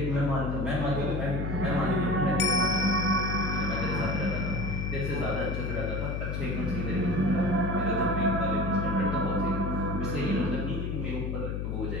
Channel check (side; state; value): left; noise; hum, 2 dB below the sound